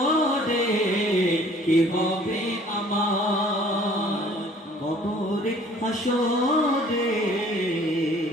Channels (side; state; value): both; normal; correlation 0.53